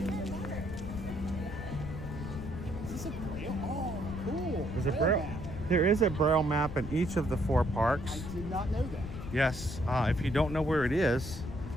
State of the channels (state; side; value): noise; left; rumble, 9 dB below the sound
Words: this a braille? Oh, cool. There's a braille. There is a braille map in each of the 4 parks. I did not know that. Yes. If you don't know where it is,